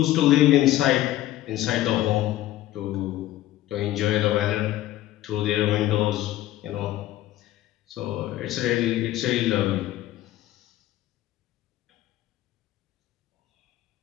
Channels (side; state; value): right; quieter; 14.6 dB